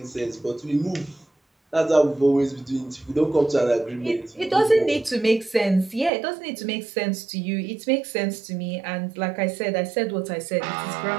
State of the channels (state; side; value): drops out; left; at 6.1 s